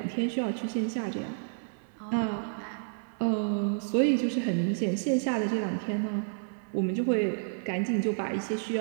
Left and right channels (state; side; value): silent; left; 57 dB below the other